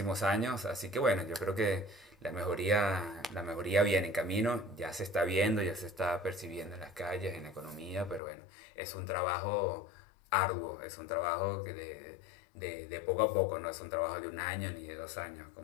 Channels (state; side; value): drops out; right; at 8.2 s